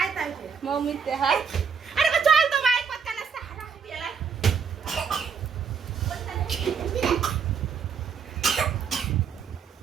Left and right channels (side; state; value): left; quieter; 6.3 dB